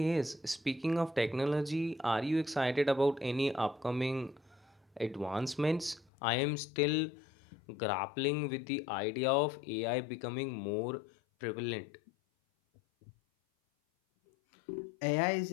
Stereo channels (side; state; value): right; drops out; at 6.1 s